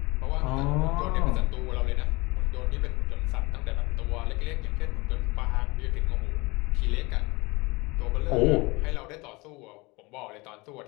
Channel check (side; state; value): right; quieter; 24.2 dB